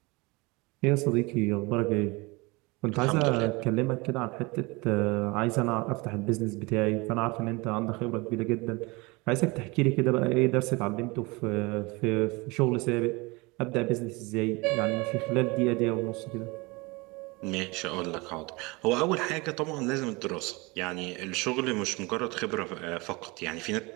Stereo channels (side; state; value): left; quieter; 25.4 dB